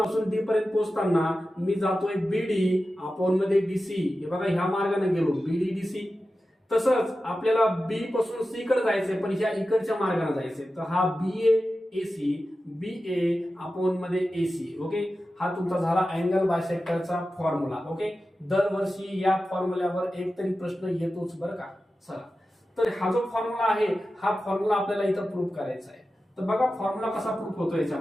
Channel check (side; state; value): both; normal; correlation 0.93